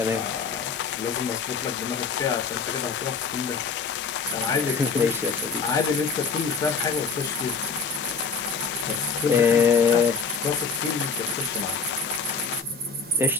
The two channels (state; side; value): quieter; right; 5.3 dB